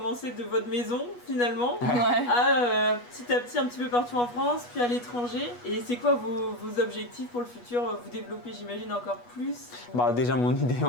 de votre maison finalement à petit à petit un petit peu partout en France, puis à l'étranger. Et c'est quoi vos objectifs pour le futur? Vous développez, j'imagine, encore plus? Déjà, mon idée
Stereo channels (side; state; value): right; late; 8.3 ms